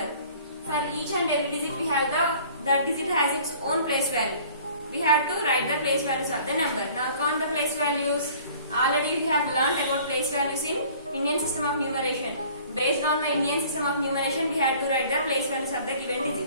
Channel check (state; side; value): inverted; both; correlation -0.51